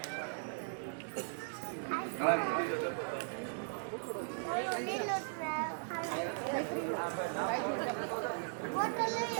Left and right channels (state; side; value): silent; left; digital silence